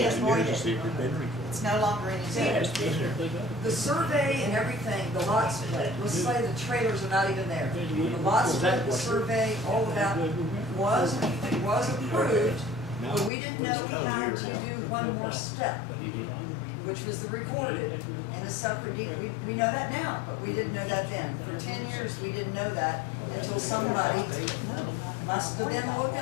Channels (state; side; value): drops out; right; at 13.3 s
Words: is voided. voided. It's no longer in existence. The survey and everything, the lot split, let's say the trailers are not even there. The lot split, the survey, all of that was approved, but we didn't know we had to do one more step, which was the recorded and a separate deed. We know that now, but we didn't know that then. For 10 years, we didn't know that until somebody must have been